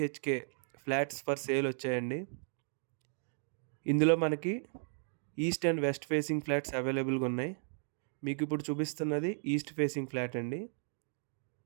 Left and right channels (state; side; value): silent; left; 54 dB below the other